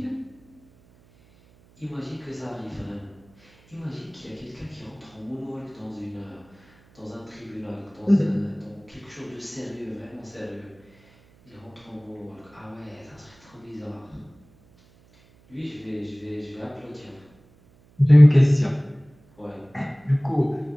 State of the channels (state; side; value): noise; right; hum, 29 dB below the sound